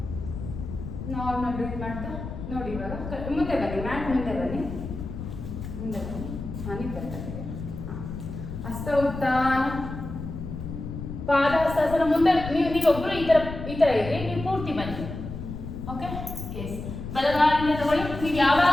ನಾರ್ಮಲ್ ಬ್ರೀತ್ ಮಾಡ್ತಾ ನೋಡಿ. ಇವಾಗ ಮುಂದೆ ಬನ್ನಿ, ಮ್ಯಾಟ್ ಮುಂದೆ ಬನ್ನಿ, ಮುಂದೆ ಬನ್ನಿ. ಹಾಂ, ನಿಂತಿರ್ತಾರೆ. ಹಾಂ, ಹಸ್ತ ಉತ್ಥಾನ, ಪಾದ ಹಸ್ತಾಸನ. ಮುಂದೆ ನೀವೊಬ್ಬರು ಈ ಥರ ಇರಿ, ನೀವು ಪೂರ್ತಿ ಬನ್ನಿ. Okay, S. ಬಲಗಾಲಿಂದ ತಗೊಳ್ಳಿ. ನೀವು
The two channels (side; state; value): left; noise; rumble, 8 dB below the sound